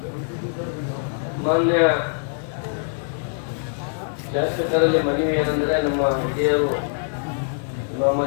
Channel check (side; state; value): right; silent; digital silence